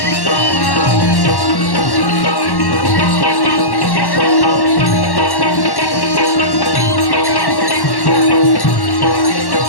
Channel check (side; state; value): right; late; 1.1 ms